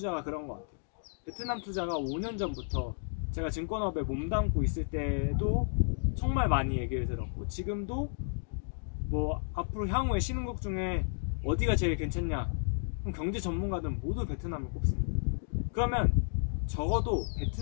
그런 것 같아요. 베트남 투자가 5년 전부터 제가 증권업에 몸담고 있을 때도 정말 많이 얘기를 들었고, 지금도 뭐 앞으로 향후에 신흥국 중에 어디가 제일 괜찮냐, 그럼 경제 전문가들은 모두 베트남을 꼽습니다. 그러면 적어도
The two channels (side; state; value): right; silent; digital silence